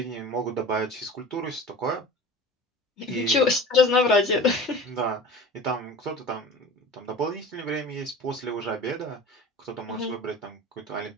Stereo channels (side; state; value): both; normal; correlation 0.37